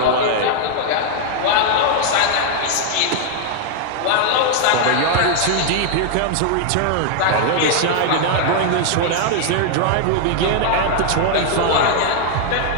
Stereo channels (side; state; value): both; different; correlation 0.00